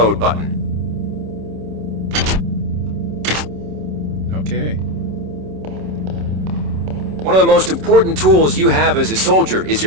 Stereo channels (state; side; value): late; left; 27 ms